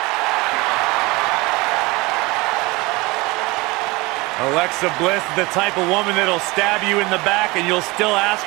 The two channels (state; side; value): quieter; left; 23.4 dB